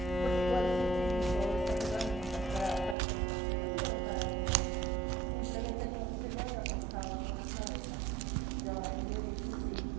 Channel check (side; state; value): left; drops out; at 3.0 s